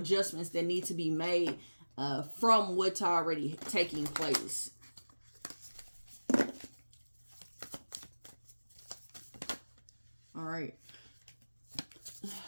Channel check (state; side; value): inverted; both; correlation -1.00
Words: that need to be made from what's already taking place. All right.